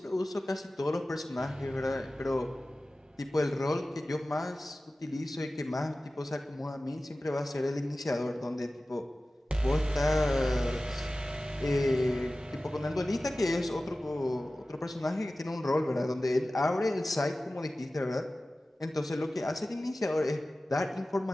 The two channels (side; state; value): both; normal; correlation 0.96